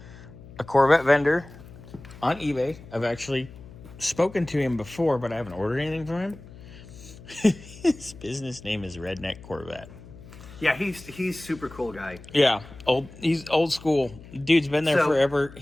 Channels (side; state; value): left; noise; hum, 18 dB below the sound